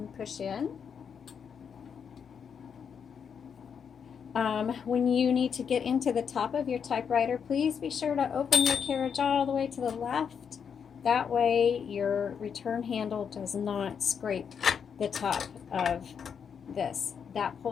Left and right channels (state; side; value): quieter; right; 7.0 dB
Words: push in. When you need to get into the top of your typewriter, please be sure to open your carriage all the way to the left. That way your return handle does not scrape the top of this. That